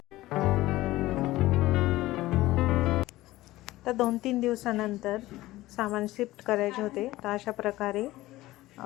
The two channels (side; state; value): right; quieter; 17.2 dB